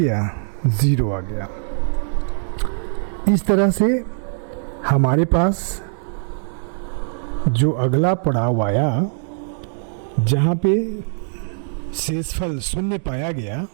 0 आ गया। इस तरह से हमारे पास जो अगला पड़ाव आया, जहाँ पे शेषफल 0 पाया गया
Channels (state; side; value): silent; left; digital silence